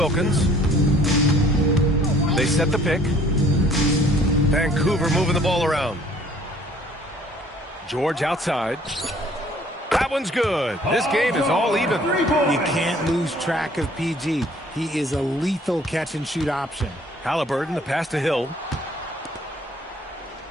They set the pick. Vancouver moving the ball around. George outside. That one's good. This game is all even. You can't lose track of PG. He is a lethal catch-and-shoot option. Halliburton, the pass to Hill.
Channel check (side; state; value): both; normal; correlation 0.57